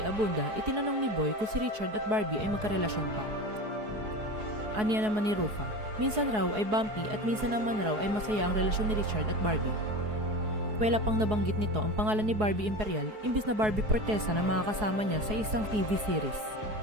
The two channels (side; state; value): left; late; 4.7 ms